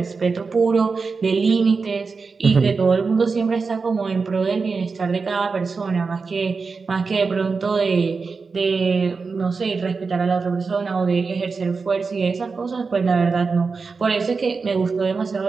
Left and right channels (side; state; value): left; quieter; 4.7 dB